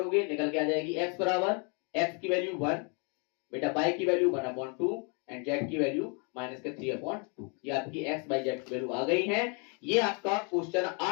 निकल के आ जाएगी एक्स बराबर एक्स की वैल्यू 1, बेटा वाई की वैल्यू 1/2 एंड जेड की वैल्यू माइनस के 3/2। ये आपकी एक्स वाई जेड की वैल्यू आ गई है। ये आपका क्वेश्चन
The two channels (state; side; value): quieter; right; 35.9 dB